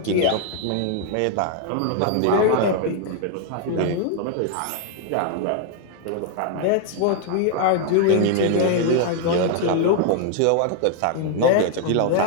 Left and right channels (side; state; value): both; different; correlation 0.00